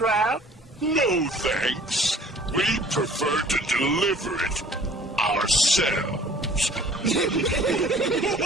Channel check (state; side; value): normal; both; correlation 0.51